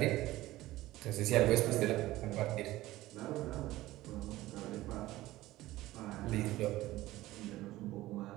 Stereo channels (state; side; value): quieter; left; 16.9 dB